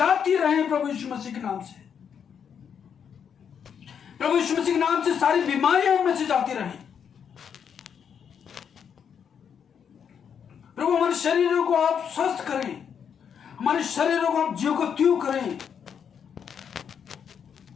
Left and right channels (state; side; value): quieter; right; 7.6 dB